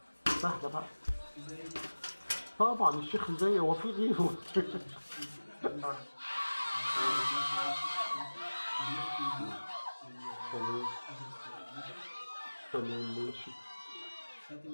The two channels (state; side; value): inverted; both; correlation -1.00